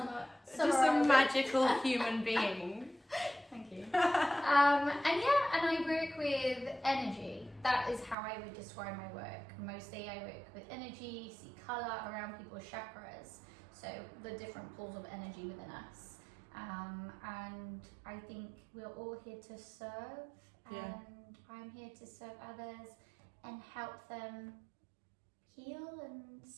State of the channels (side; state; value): left; drops out; at 8.2 s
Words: Just a magical human being. Thank you. And I work with energy. That is how I would describe my work. Mostly I work with energy, see colour around people's chakras, so the different pools of energy within us. And I think we're all here to serve, and I'm here to serve others and help them heal and